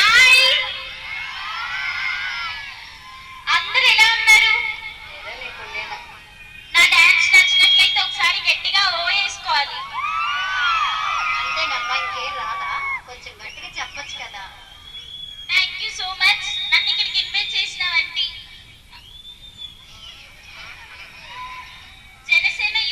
అందరూ ఎలా ఉన్నారు? నా డాన్స్ నచ్చినట్లయితే ఒకసారి గట్టిగా ఓ వేసుకోవాలి. అంతేనమ్మా ఇంకేం రాదా? కొంచెం గట్టిగా చెప్పొచ్చు కదా. థ్యాంక్ యూ సో మచ్ నన్ను ఇక్కడికి ఇన్వైట్ చేసినవంటి జనసేన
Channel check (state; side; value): identical; both; correlation 1.00